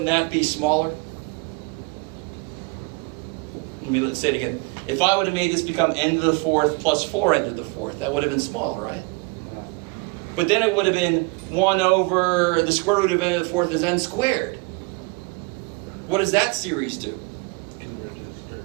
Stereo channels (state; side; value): quieter; left; 29.1 dB